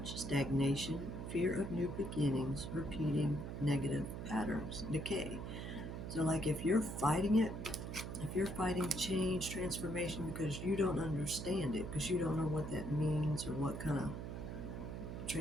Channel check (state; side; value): noise; right; hum, 6 dB below the sound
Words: stagnation, fear of new beginnings, repeating negative patterns, decay. So, like if you're fighting it, if you're fighting change, transformation because you don't understand it, because you don't know what that means or what kind of